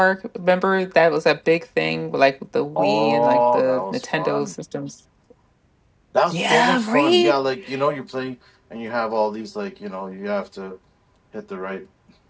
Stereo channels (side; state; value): both; identical; correlation 1.00